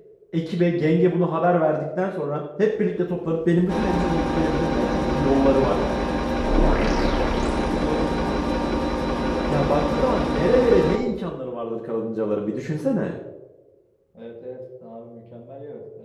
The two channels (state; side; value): identical; both; correlation 1.00